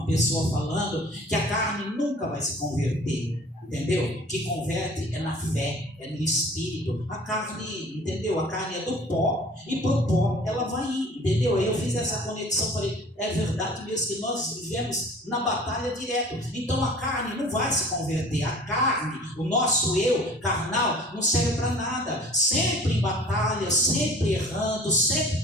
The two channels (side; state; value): both; normal; correlation 0.47